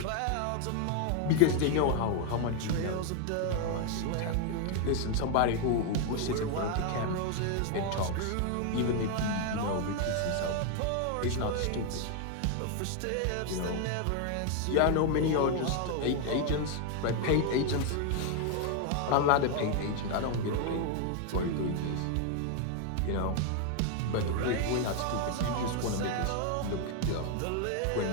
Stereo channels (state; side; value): different; both; correlation 0.01